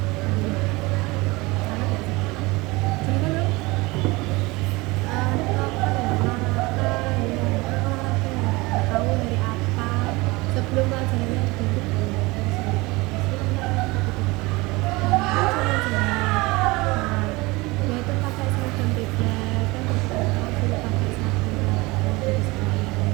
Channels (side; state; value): left; quieter; 23.1 dB